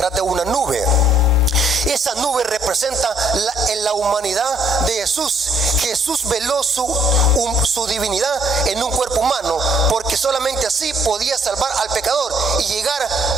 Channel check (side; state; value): both; normal; correlation 0.65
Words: de una nube. Esa nube representa la humanidad de Jesús. Jesús veló su divinidad en un cuerpo humano, porque solamente así podía salvar al pecador y llegar